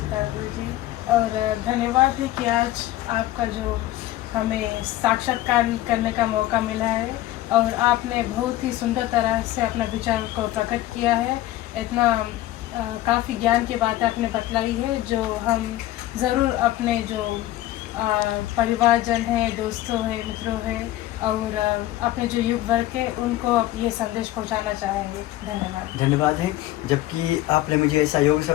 जी। और धन्यवाद है कि आज आपका जो हमें साक्षात्कार करने का मौका मिला है, और आपने बहुत ही सुंदर तरह से अपना विचार को प्रकट किया है। इतना काफ़ी ज्ञान की बातें आपने बतलाई है, जो हम ज़रूर अपने जो परिवारजन है, दोस्तों है, मित्रों है, और अपने जो युग वर्ग के, उनको ये संदेश पहुंचाना चाहेंगे। धन्यवाद है, जबकि आपने मुझे ऐसा योग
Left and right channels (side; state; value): right; quieter; 15.3 dB